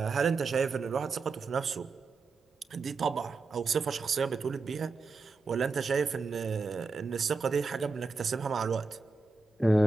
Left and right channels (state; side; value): quieter; left; 4.1 dB